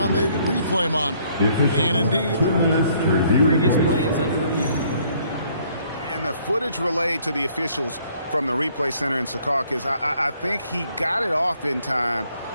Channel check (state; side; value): inverted; both; correlation -0.64